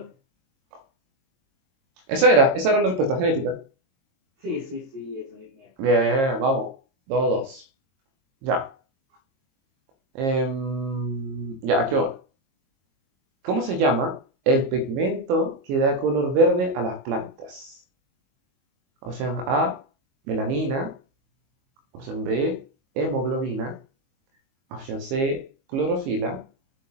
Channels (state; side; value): late; left; 22 ms